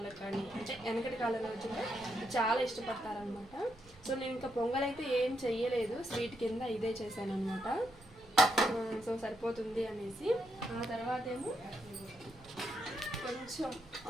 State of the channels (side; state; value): right; noise; rumble, 23 dB below the sound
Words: కానీ, అంటే వెనకటి కాలం రోజుల్లో చాలా ఇష్టపడతారనమాట. సో నేను ఇంకా పొంగల్ అయితే ఏం చెయ్యలేదు, స్వీట్ కింద ఇదే చేశాను అనమాట. సో సరిపోతుంది అనేసి. ఆ తర్వాత ఏమో కొంచెం